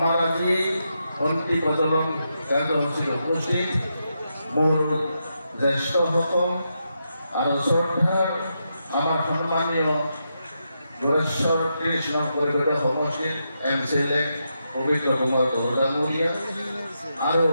আজি বন্তি প্ৰজ্বলন কাৰ্যসূচীত উপস্থিত মোৰ জ্যেষ্ঠসকল আৰু শ্ৰদ্ধাৰ আমাৰ সন্মানীয় যোগেশ্বৰ কৃষ্ণ পৰিষদৰ সমষ্টিৰ MCLA পবিত্ৰ কুমাৰ ডাঙৰীয়া আৰু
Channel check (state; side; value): inverted; both; correlation -0.84